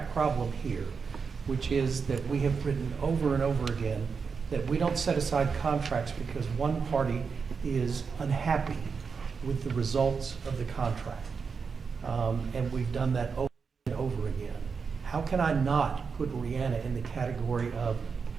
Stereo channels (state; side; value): quieter; left; 5.5 dB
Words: problem here, which is that we have written over and over again that we don't set aside contracts because one party is unhappy with the results of the contract. And we've done that over and over again. How can I not put Rihanna in the category of